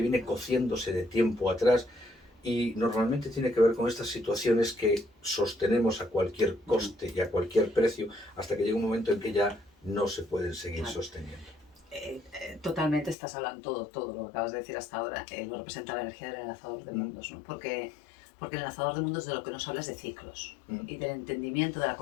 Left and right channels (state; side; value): drops out; right; at 13.2 s